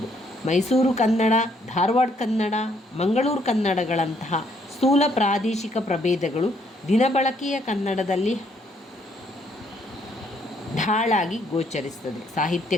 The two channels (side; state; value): both; normal; correlation 0.69